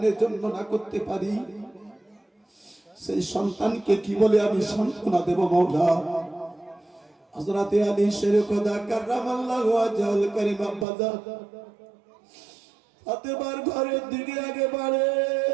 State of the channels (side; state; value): left; drops out; at 10.9 s